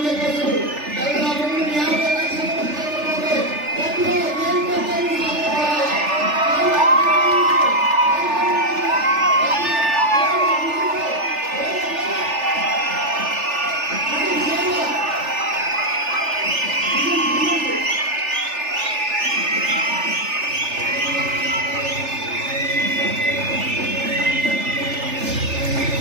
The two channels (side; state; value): left; late; 3.4 ms